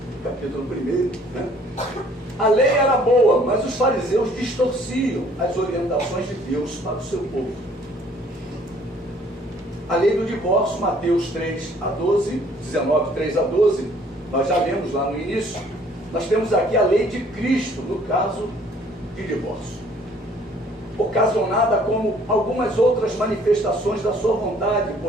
capítulo 1. A lei era boa, mas os fariseus distorciam as orientações de Deus para o seu povo. A lei do divórcio, Mateus 3 a 12, 19, 3 a 12, nós já lemos lá no início. Nós temos aqui a lei de Cristo, no caso de divórcio, ocasionada como algumas outras manifestações da sua vontade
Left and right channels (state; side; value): normal; both; correlation 0.58